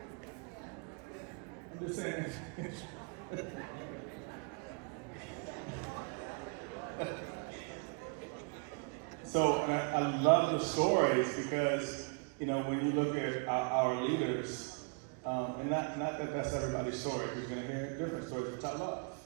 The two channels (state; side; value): quieter; left; 35.1 dB